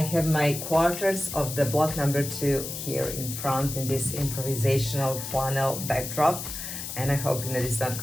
my quarters of the block number 2 here in front in this improvisational flannel backdrop, and I hope that it's not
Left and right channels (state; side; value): noise; left; hiss, 7 dB below the sound